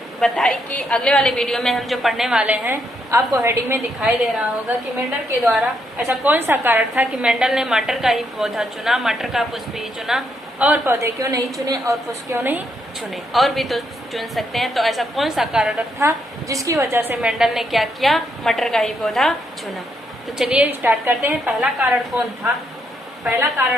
बताई कि अगले वाले वीडियो में हम जो पढ़ने वाले हैं, आपको हेडिंग में दिखाई दे रहा होगा कि मेंडल के द्वारा ऐसा कौन सा कारण था कि मेंडल ने मटर का ही पौधा चुना, मटर का पुष्प ही चुना, और पौधे क्यों नहीं चुने और पुष्प क्यों नहीं चुने, और भी तो चुन सकते हैं। तो ऐसा कौन सा कारण था जिसकी वजह से मेंडल ने क्या किया, मटर का ही पौधा चुना। तो चलिए स्टार्ट करते हैं। पहला कारण कौन था? पहला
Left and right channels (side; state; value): both; normal; correlation 0.77